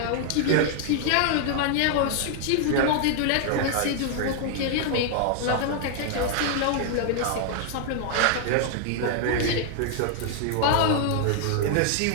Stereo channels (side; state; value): both; different; correlation 0.00